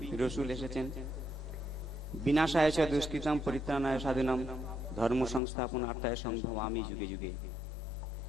রসুল এসেছেন। বিনাশায় চ দুষ্কৃতম পরিত্রাণায় সাধুনাম ধর্ম সংস্থাপনার্থায় সম্ভবামি যুগে যুগে।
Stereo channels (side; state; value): right; drops out; at 5.4 s